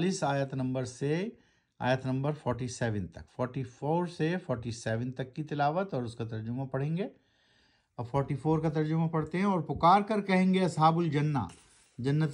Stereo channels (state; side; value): identical; both; correlation 1.00